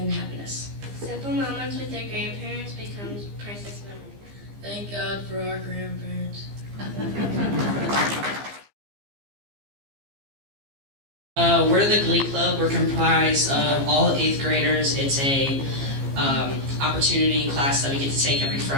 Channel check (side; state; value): left; late; 15 ms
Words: happiness. Simple moments with their grandparents becomes priceless memories. Thank God for our grandparents. We're the Glee Club. We're comprised of all 8th graders. It's a opportunity class that we get to take every